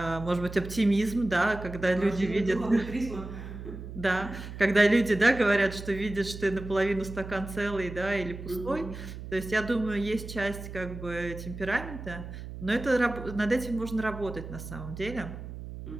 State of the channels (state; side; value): noise; right; hum, 10 dB below the sound